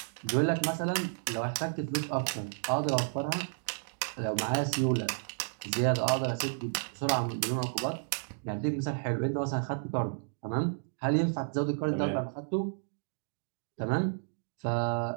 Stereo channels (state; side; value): silent; left; digital silence